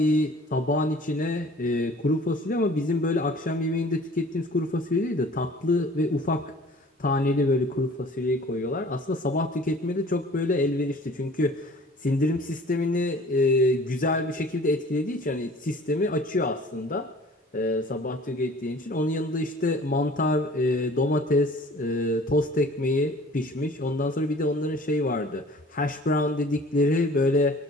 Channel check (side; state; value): both; normal; correlation 0.48